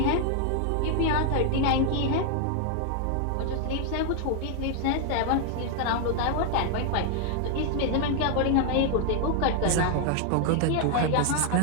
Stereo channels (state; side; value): different; both; correlation 0.00